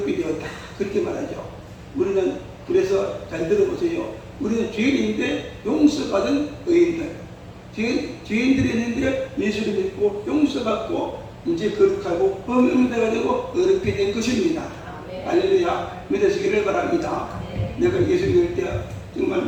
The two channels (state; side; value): identical; both; correlation 1.00